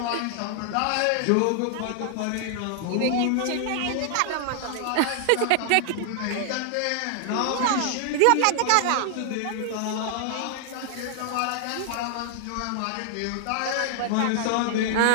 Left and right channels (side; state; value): both; different; correlation 0.00